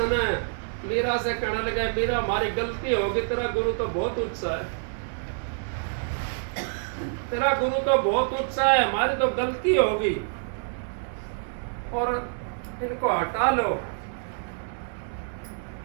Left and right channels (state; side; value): silent; left; 60 dB below the other